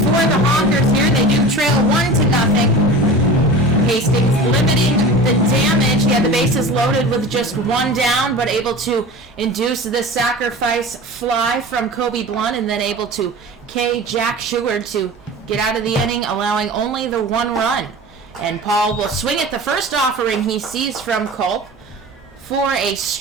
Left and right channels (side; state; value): both; normal; correlation 0.35